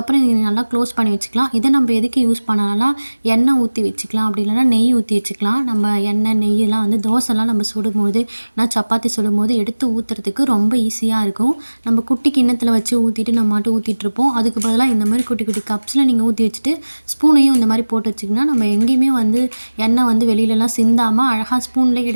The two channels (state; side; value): inverted; both; correlation -1.00